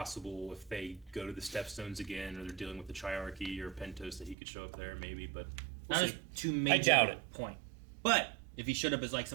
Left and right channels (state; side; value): drops out; left; at 4.4 s